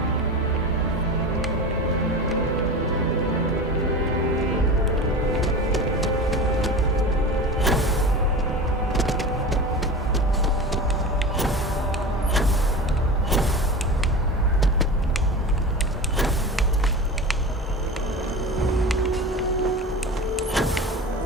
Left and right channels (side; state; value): both; normal; correlation 0.30